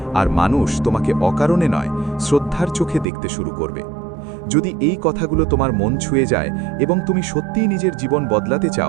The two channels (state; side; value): drops out; left; at 3.1 s